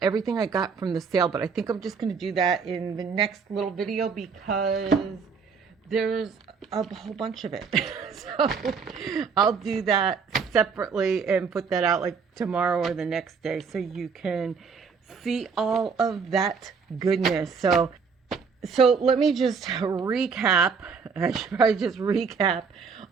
everything I got from the sale, but I think I'm just going to do that in the next little video because there's a whole bunch of it. So I'll do that separately and put that out like tomorrow or the next day so you can see all of that goodness. So let me just recap. I should probably just recap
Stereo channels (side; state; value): left; quieter; 5.6 dB